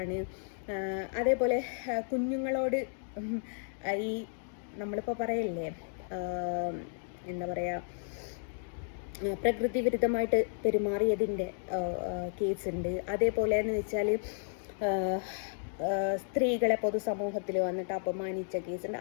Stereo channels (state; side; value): silent; right; digital silence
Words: അതേപോലെ കുഞ്ഞുങ്ങളോട് ഈ നമ്മളിപ്പോൾ പറയല്ലേ എന്താ പറയുക, പ്രകൃതി വിരുദ്ധമായിട്ട് പെരുമാറിയതിൻ്റെ കേസുണ്ട്. അതേപോലെ എന്ന് വെച്ചാൽ സ്ത്രീകളെ പൊതുസമൂഹത്തിൽ വന്നിട്ട് അപമാനിച്ച കേസുണ്ട്.